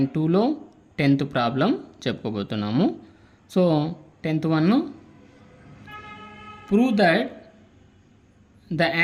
10th problem చెప్పుకోబోతున్నాము. So 10th one, prove that the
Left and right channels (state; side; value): identical; both; correlation 1.00